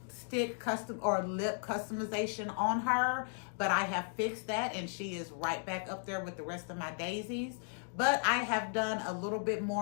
lip customization on her. But I have fixed that, and she is right back up there with the rest of my daisies. But I have done a little bit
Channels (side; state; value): right; silent; 54 dB below the other